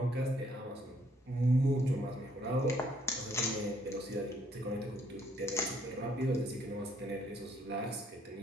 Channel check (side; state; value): both; normal; correlation 0.67